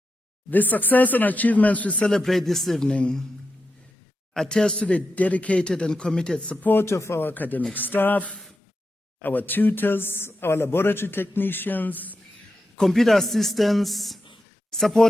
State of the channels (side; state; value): both; normal; correlation 0.88